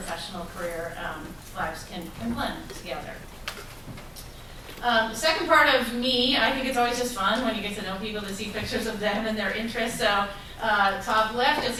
career lives can blend together. The second part of me, I think it's always just fun when you get to know people to see pictures of them and their interests. So top left, you'll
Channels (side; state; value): both; identical; correlation 1.00